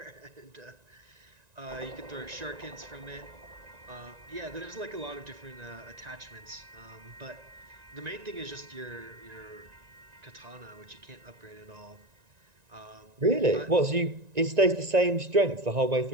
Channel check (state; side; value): late; left; 1.9 ms